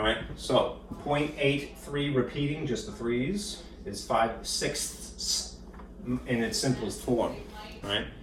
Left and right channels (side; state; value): both; identical; correlation 1.00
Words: right, so 0.83 repeating, just the 3's, is 5/6 in its simplest form, right?